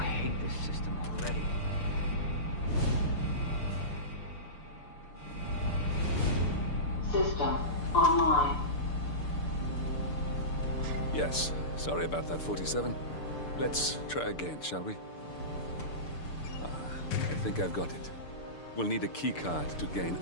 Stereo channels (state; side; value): late; right; 6.8 ms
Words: hate this system already. System online. Yes, sorry about that, 47. Let's try again, shall we? I think I've got it. We'll need a keycard to gain